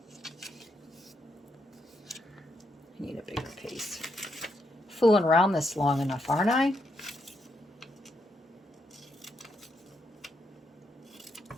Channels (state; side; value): normal; both; correlation 0.79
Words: I need a bigger piece. Fooling around this long enough, aren't I?